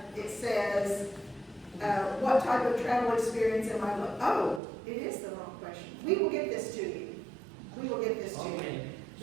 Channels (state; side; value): drops out; left; at 4.6 s